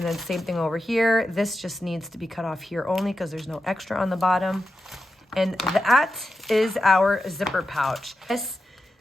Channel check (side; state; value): both; normal; correlation 0.90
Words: then same thing over here. This just needs to be cut off here only because there's no extra on the bottom. And that is our zipper pouch. This